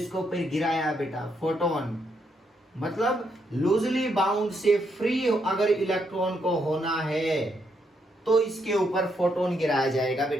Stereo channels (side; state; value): both; normal; correlation 0.77